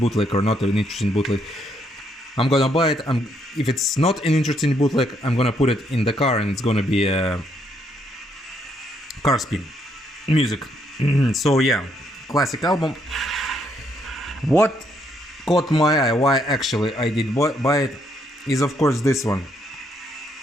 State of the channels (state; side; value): normal; both; correlation 0.73